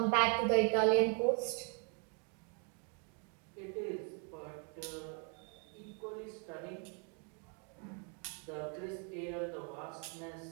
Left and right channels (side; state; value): left; quieter; 39.2 dB